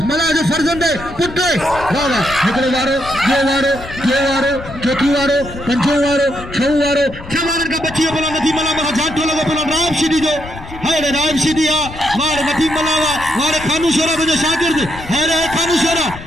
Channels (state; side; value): noise; left; rumble, 14 dB below the sound